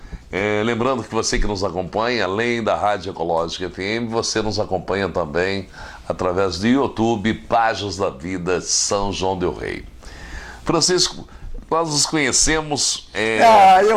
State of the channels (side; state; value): both; identical; correlation 1.00